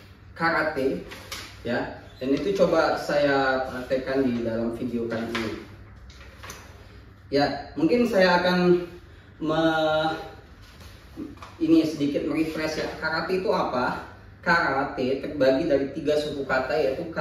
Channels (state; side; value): identical; both; correlation 1.00